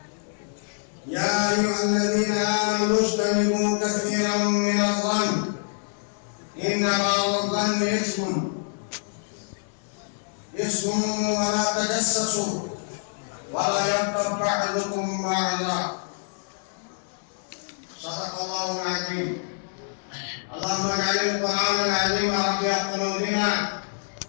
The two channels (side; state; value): right; silent; 61 dB below the other